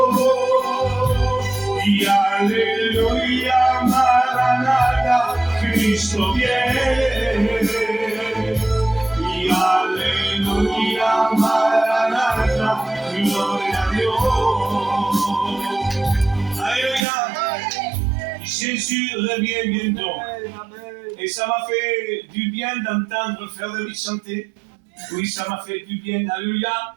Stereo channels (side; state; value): left; drops out; at 17.1 s